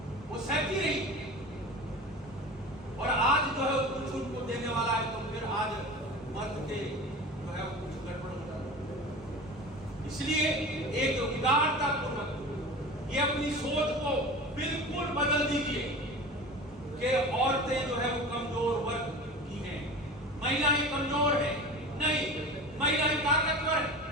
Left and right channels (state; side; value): normal; both; correlation 0.33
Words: वो सहती रही और आज जो है कुछ उनको देने वाला है, तो फिर आज मर्द के जो है कुछ गड़बड़ हो जाता। इसलिए एक उदारता पूर्वक ये अपनी सोच को बिल्कुल बदल दीजिए कि औरतें जो है वो कमजोर वर्ग की हैं, महिलाएं कमजोर हैं, नहीं, महिलाएं ताकतवर हैं।